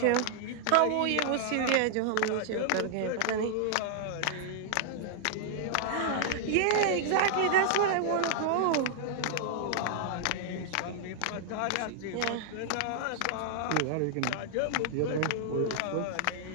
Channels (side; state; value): both; different; correlation -0.01